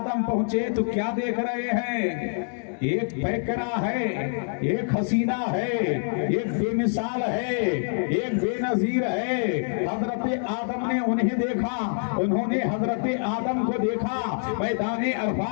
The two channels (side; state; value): right; silent; digital silence